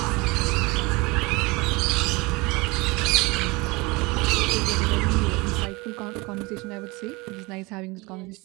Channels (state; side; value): quieter; left; 24.9 dB